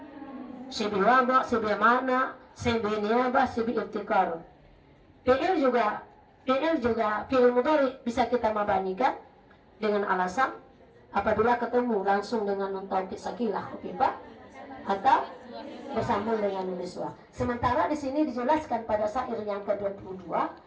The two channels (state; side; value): identical; both; correlation 1.00